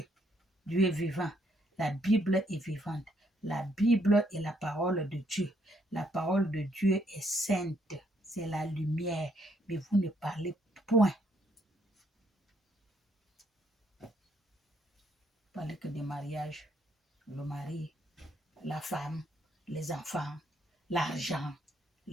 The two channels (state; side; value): normal; both; correlation 0.71